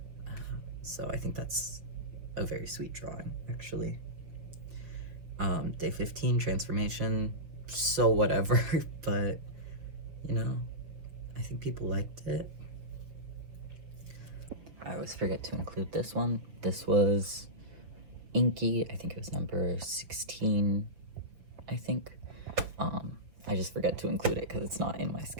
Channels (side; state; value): left; late; 6.5 ms